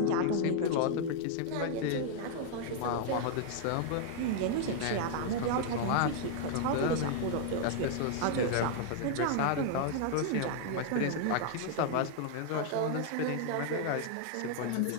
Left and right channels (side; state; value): both; different; correlation 0.00